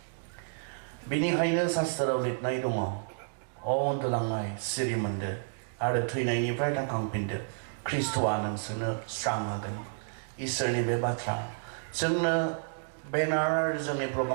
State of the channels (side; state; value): left; silent; digital silence